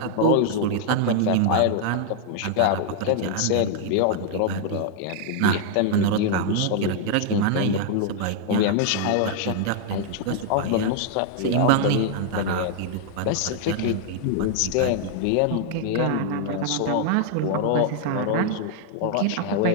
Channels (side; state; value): both; different; correlation 0.00